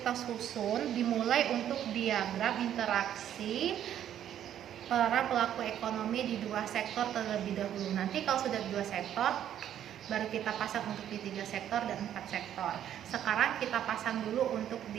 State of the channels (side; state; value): left; quieter; 10.5 dB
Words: susun dimulai untuk diagram interaksi para pelaku ekonomi di dua sektor terlebih dahulu. Nanti kalau sudah dua sektor, baru kita pasang untuk di 3 sektor dan 4 sektor. Sekarang kita pasang dulu untuk